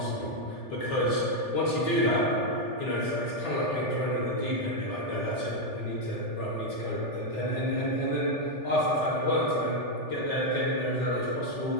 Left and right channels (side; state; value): right; late; 3.4 ms